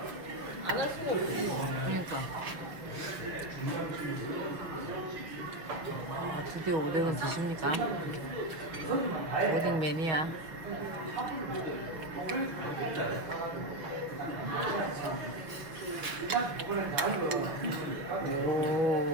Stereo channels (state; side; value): late; left; 6.1 ms